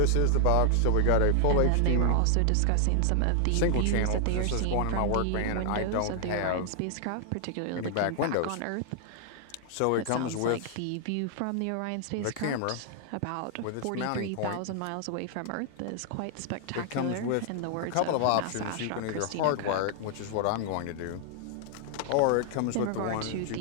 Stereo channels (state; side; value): different; both; correlation 0.00